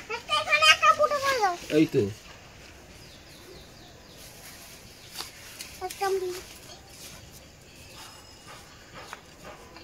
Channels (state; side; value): identical; both; correlation 1.00